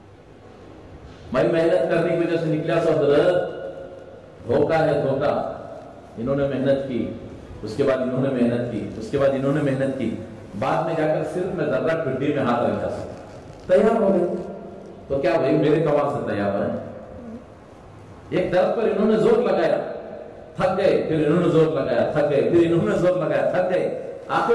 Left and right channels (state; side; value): identical; both; correlation 1.00